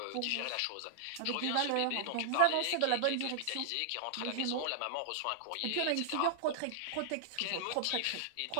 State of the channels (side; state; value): both; different; correlation -0.01